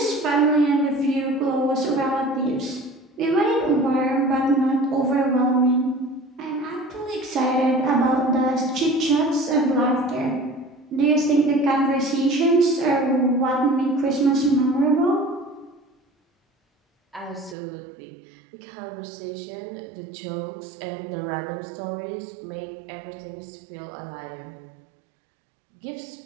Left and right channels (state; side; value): drops out; left; at 17.6 s